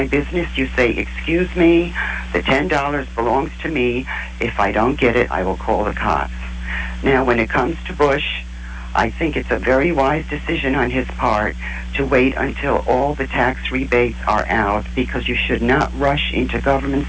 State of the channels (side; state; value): both; identical; correlation 1.00